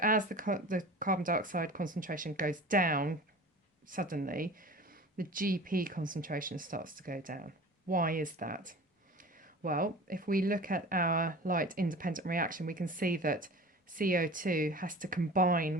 as the carbon dioxide concentration goes down suddenly, the GP concentration starts to go down. Why is that? Well, if we look at our light independent reaction, we can see that CO2 has to combine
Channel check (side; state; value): both; normal; correlation 0.39